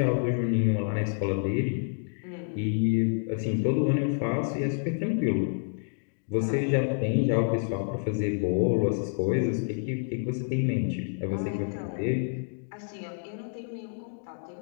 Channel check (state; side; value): silent; right; 59 dB below the other